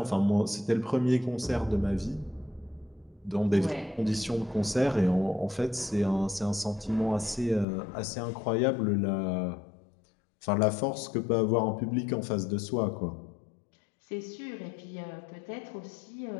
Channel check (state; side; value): drops out; right; at 7.7 s